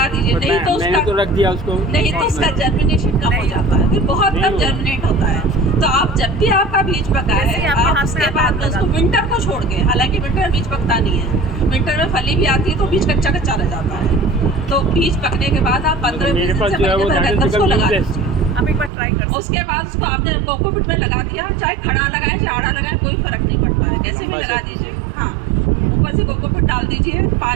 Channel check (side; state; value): left; drops out; at 18.9 s